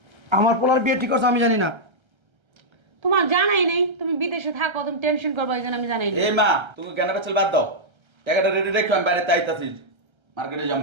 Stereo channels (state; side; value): late; left; 1.3 ms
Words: আমার পোলার বিয়ে ঠিক করছে আমি জানি না। তোমার জানাই নেই, তুমি বিদেশে থাকো, তুমি টেনশন করবো এই জন্য আমি জানাই না। এই মা তুমি কেন পেছল বাদ দাও টাকাটা রেডি রেখো আমি বাইরে তাইতাছি মার্কেটে যাম